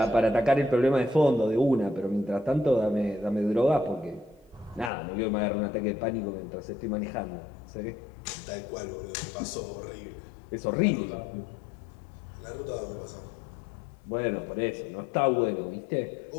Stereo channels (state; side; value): drops out; right; at 4.9 s